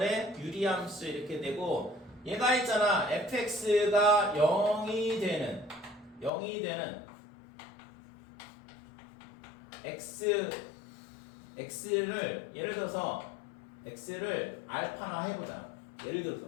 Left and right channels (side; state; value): right; drops out; at 6.3 s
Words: 유리함수 이렇게 되고 얘가 있잖아 fx가 0이 되는 x를 예를 들어서 x를 알파나 해보자. 예를